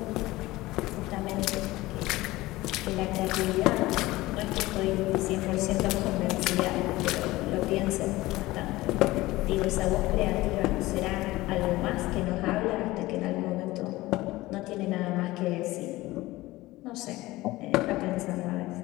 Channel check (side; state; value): right; quieter; 18.7 dB